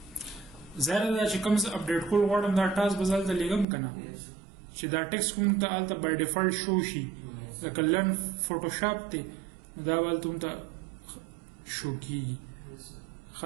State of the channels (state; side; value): drops out; left; at 3.7 s